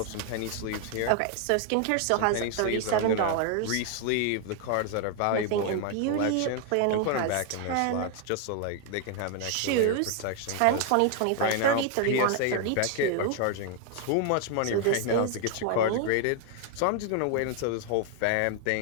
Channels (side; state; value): both; different; correlation 0.00